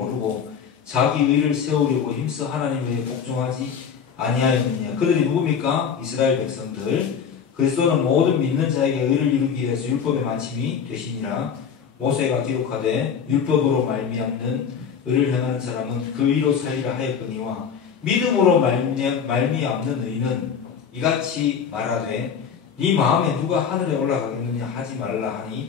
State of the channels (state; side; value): quieter; right; 7.0 dB